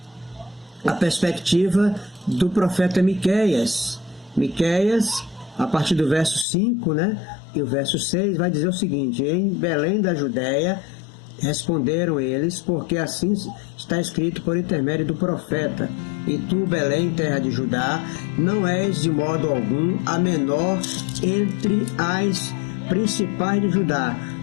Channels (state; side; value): drops out; right; at 6.5 s